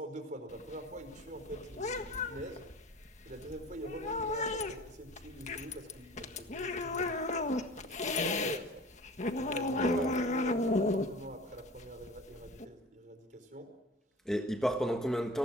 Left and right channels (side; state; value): both; normal; correlation 0.41